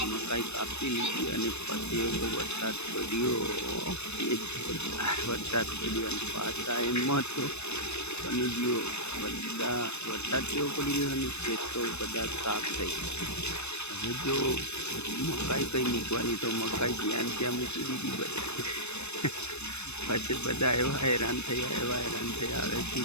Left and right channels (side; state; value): right; late; 0.81 ms